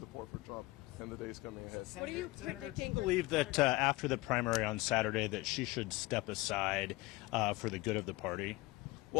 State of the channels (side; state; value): right; quieter; 21.2 dB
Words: for Trump in the days coming ahead. What are you predicting? Do you believe that after the primary on Saturday that she should step aside for the good of the party?